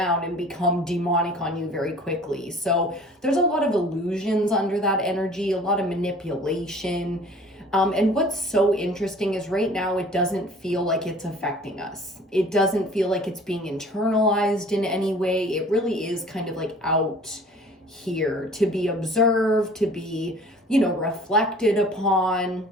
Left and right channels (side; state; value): both; normal; correlation 0.48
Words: and become demonic on you very quickly. So there's a lot of illusions under that energy, a lot of manipulation. And what's so interesting is right now it doesn't feel like it's affecting us. It doesn't feel like it's being internalized in any way. It really is kind of like out here to be observed, to be reflected upon.